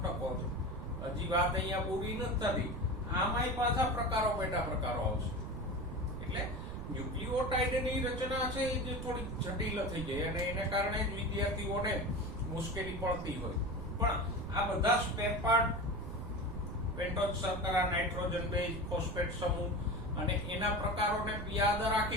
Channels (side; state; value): right; noise; rumble, 7 dB below the sound